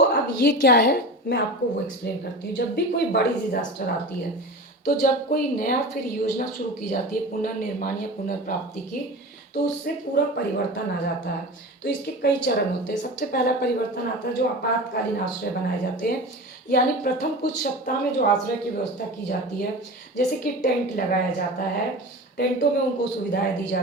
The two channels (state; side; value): normal; both; correlation 0.31